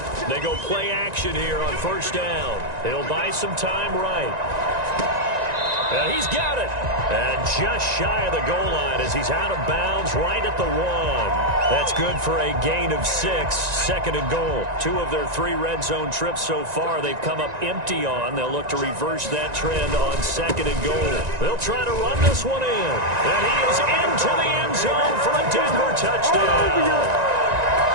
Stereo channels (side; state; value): left; late; 1.9 ms